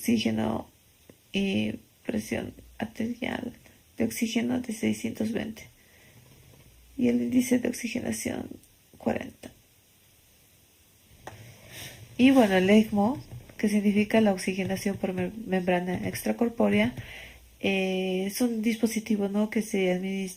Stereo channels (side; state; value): both; identical; correlation 1.00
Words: y presión arterial de oxígeno de 620 y el índice de oxigenación 40. Y bueno, el ECMO, que significa la oxigenación por membrana extracorpórea, es un dispositivo, ¿no?, que se